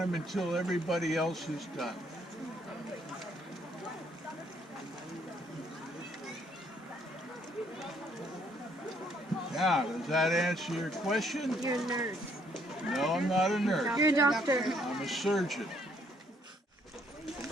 until everybody else is done. Now, does that answer your question? You're a nurse. No, I'm not a nurse. You're a doctor. I'm a surgeon.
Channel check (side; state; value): both; normal; correlation 0.67